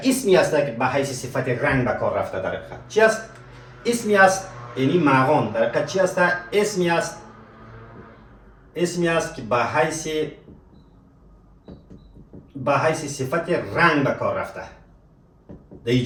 اسمی است که به حیث صفت رنگ به کار رفته. در حقیقت چی است؟ اسمی است یعنی مغان در حقیقت چی است؟ اسمی است که به حیث صفت رنگ به کار رفته در این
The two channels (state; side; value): identical; both; correlation 1.00